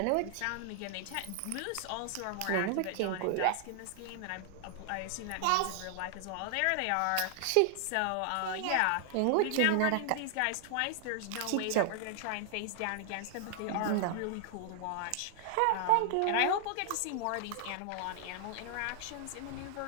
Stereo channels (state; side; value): different; both; correlation 0.00